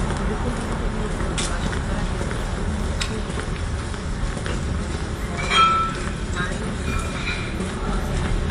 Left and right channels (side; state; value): both; identical; correlation 1.00